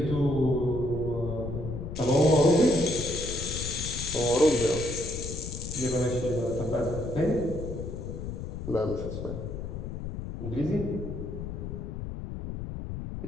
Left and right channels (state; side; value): noise; left; rumble, 7 dB below the sound